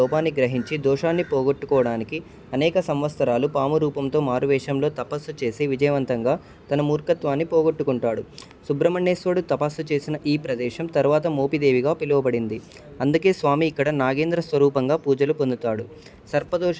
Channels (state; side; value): identical; both; correlation 1.00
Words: గ్రహించి దోషాన్ని పోగొట్టుకోవడానికి అనేక సంవత్సరాలు పాము రూపంతో మారువేషంలో తపస్సు చేసి విజయవంతంగా తన మూర్ఖత్వాన్ని పోగొట్టుకుంటాడు. సుబ్రహ్మణ్యేశ్వరుడు తపస్సు చేసిన ఈ ప్రదేశం తర్వాత మోపిదేవిగా పిలువబడింది. అందుకే స్వామి ఇక్కడ నాగేంద్ర స్వరూపంగా పూజలు పొందుతాడు.